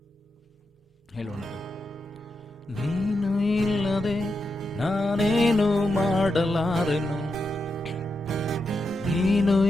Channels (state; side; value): normal; both; correlation 0.86